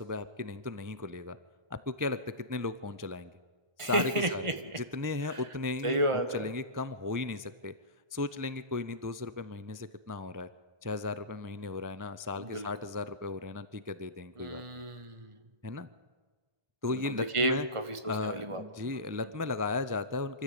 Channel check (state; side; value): late; left; 1.4 ms